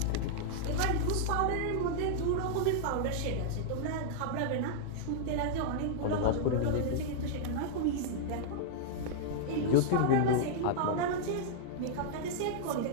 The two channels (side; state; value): both; different; correlation -0.02